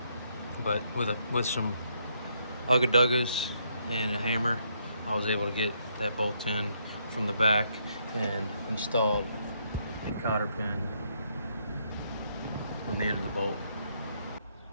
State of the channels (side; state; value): both; inverted; correlation -0.74